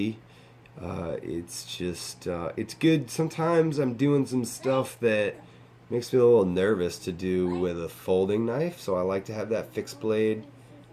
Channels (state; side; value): identical; both; correlation 1.00